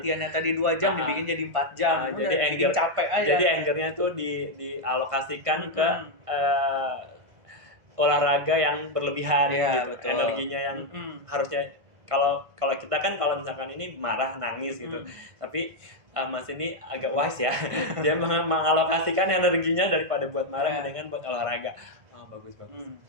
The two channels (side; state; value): left; late; 1.5 ms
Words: tadi 2 jam ah, dibikin jadi 4 jam. jadi Udah bikin anger capek aja. jadi angernya tuh dialokasikan ke Mm-mm. eh, olahraga yang berlebihan Iya gitu, betul. energinya yang Mm-mm. harusnya kalau kalau kita kan kalau misalkan ini marah nangis gitu, Mm-mm. tapi Mas ini agak wise ya, dia mengalokasikan energinya daripada buat marah Ya. mendingan buat olahraga. Oh, bagus.